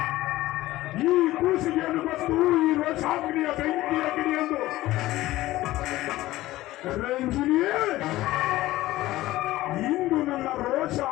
ಈ ಕೂಸಿಗೆಯನ್ನು ಗೊತ್ತು ಈ ರೋಷಾಗ್ನಿಯ ಬೆಂಕಿಯ ಗಿಡಿಯೆಂದು. ರಂಜಿನಿಯೇ, ಇಂದು ನನ್ನ ರೋಷ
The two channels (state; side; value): quieter; right; 16.7 dB